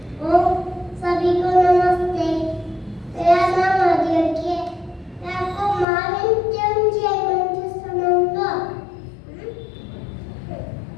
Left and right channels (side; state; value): right; drops out; at 5.9 s